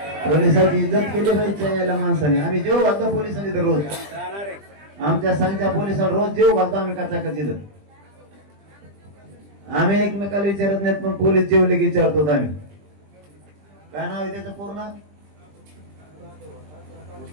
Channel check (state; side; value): late; left; 20 ms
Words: पोलिसांची इज्जत केली पाहिजे याला माणसाने. आम्ही जेव घालतो पोलिसांनी तर रोज. आमच्या संघच्या पोलिसांना रोज जेव घालतो आम्ही कचाकच इथं. आम्ही एकमेकाला विचारत नाहीत पण पोलीस जेवले की विचारतो आम्ही. काय नाव आहे त्याचं पूर्ण?